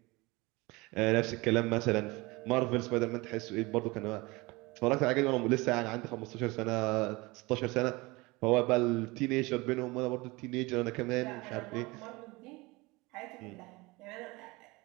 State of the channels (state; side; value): quieter; left; 23.4 dB